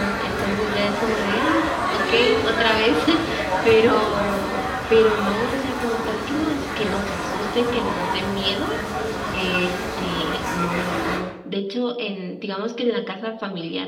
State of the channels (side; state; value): both; identical; correlation 1.00